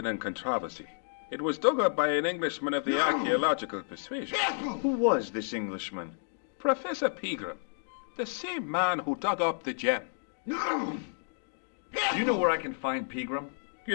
and controversy. It was dug up by an Englishman of the archaeological persuasion. Who was this Englishman? Professor Pegram, the same man who dug up the gem. Do you know where I can find Pegram?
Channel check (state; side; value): silent; right; digital silence